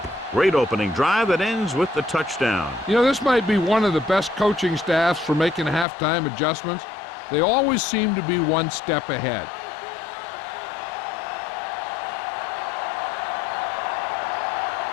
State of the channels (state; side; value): drops out; right; at 5.9 s